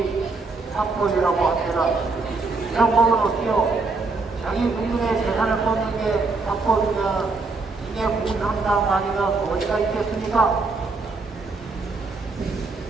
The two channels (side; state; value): left; quieter; 3.9 dB